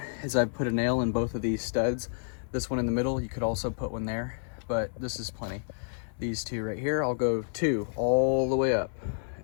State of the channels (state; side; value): silent; right; 58 dB below the other